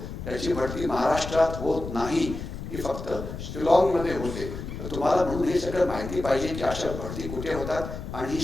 त्याची भरती महाराष्ट्रात होत नाही, ही फक्त शिलाँगमध्ये होते. तर तुम्हाला म्हणून हे सगळं माहिती पाहिजे की अशा भरती कुठे होतात आणि ही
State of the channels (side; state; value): left; noise; rumble, 8 dB below the sound